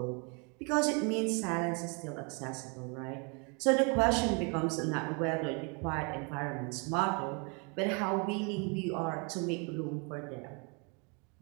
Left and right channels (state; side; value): quieter; left; 34.0 dB